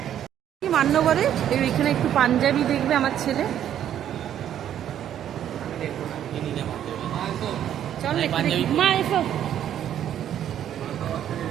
মান্যবরে এখানে একটু পাঞ্জাবি দেখবে আমার ছেলে। চল মা এসো।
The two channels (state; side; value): quieter; left; 10.5 dB